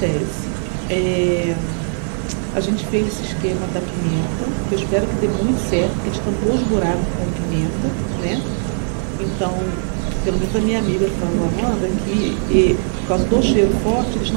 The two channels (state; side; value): silent; left; digital silence